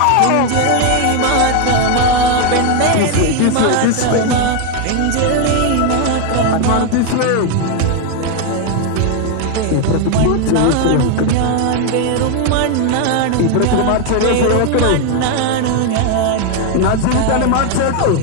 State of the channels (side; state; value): both; different; correlation 0.01